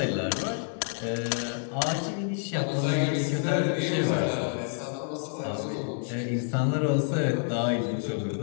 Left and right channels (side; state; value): right; silent; 59 dB below the other